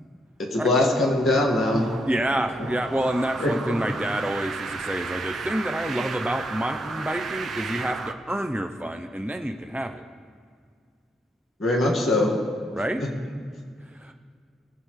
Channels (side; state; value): both; normal; correlation 0.76